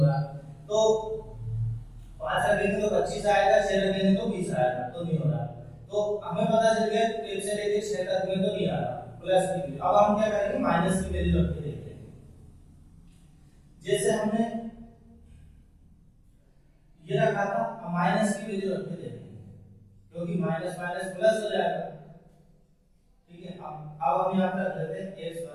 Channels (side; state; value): both; identical; correlation 1.00